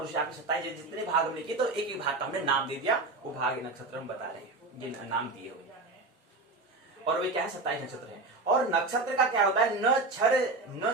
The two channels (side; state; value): left; quieter; 3.4 dB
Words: उसे आपने 27 जितने भाग हमने किए तो एक एक भाग का हमने नाम दे दिया, वो भाग नक्षत्र हम बता रहे हैं, ये नाम दिए हुए। और वे क्या है 27 नक्षत्र हैं। और नक्षत्र का क्या होता है, न